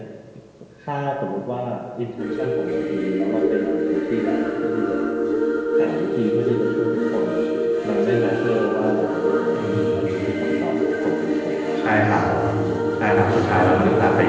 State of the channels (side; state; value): both; identical; correlation 1.00